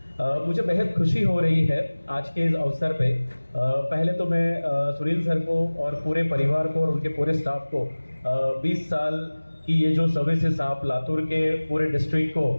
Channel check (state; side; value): inverted; both; correlation -1.00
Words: मुझे बेहद खुशी हो रही है आज के इस अवसर पे. पहले तो मैं सुनील सर को और पूरे परिवार को और उनके पूरे स्टाफ को 20 साल की ये जो सर्विसेज आप लातूर के पूरे डिस्ट्रिक्ट को